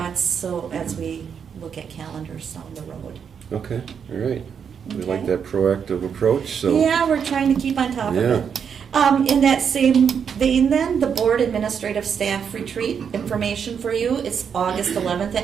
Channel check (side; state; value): left; quieter; 7.2 dB